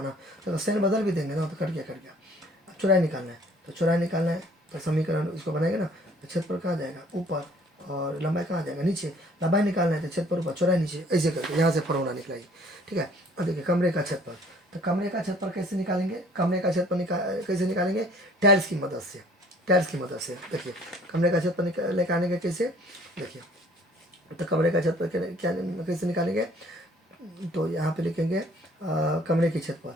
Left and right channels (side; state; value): both; normal; correlation 0.56